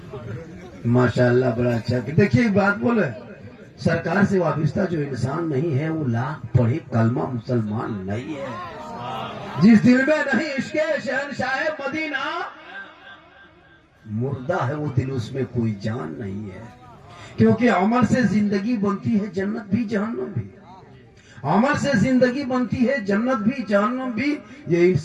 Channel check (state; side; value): identical; both; correlation 1.00